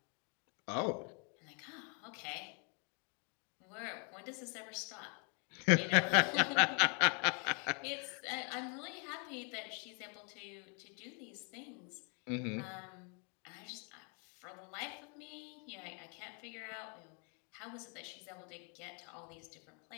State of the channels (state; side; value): quieter; right; 37.6 dB